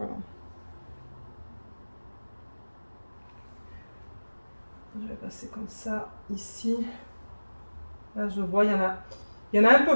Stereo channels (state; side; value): inverted; both; correlation -1.00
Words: Je vais passer comme ça ici. Là, je vois, il y en a un